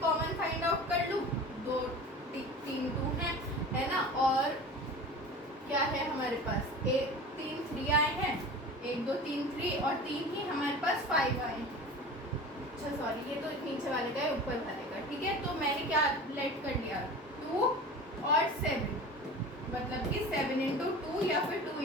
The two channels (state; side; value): normal; both; correlation 0.36